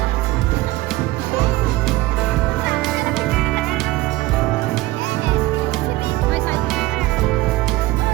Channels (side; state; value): left; quieter; 18.1 dB